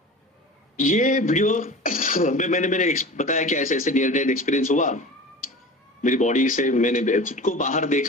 ये वीडियो में मैंने बताया कि ऐसे ऐसे नियर डेथ एक्सपीरियंस हुआ मेरी बॉडी से, मैंने खुद को बाहर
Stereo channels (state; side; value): normal; both; correlation 0.36